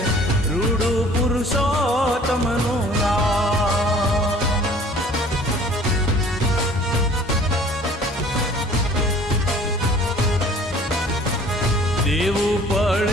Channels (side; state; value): both; normal; correlation 0.51